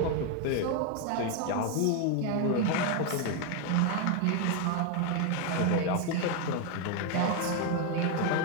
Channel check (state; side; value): different; both; correlation 0.01